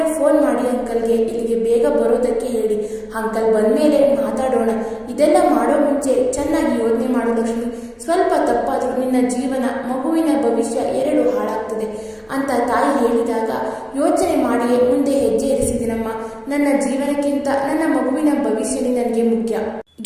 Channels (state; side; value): identical; both; correlation 1.00